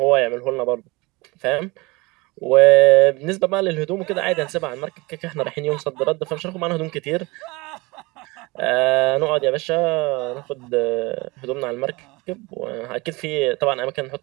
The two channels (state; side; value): quieter; left; 24.1 dB